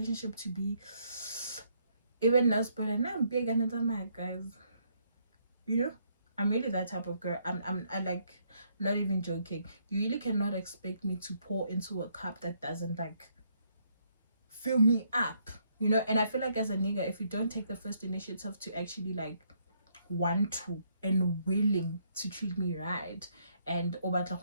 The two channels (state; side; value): inverted; both; correlation -0.72